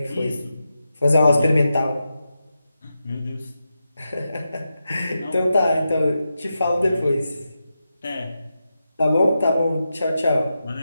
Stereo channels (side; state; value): both; inverted; correlation -0.89